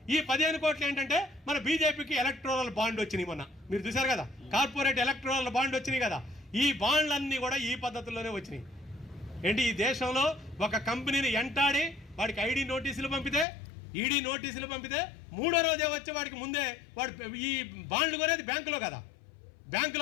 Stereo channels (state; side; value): drops out; right; at 13.5 s